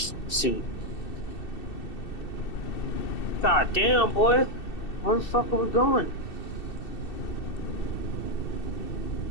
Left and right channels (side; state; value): right; late; 2.7 ms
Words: suit. God damn, boy. Where the fuck are we going?